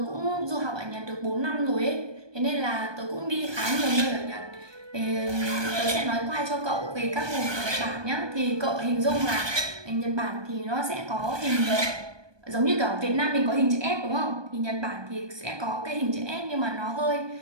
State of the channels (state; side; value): late; left; 1.2 ms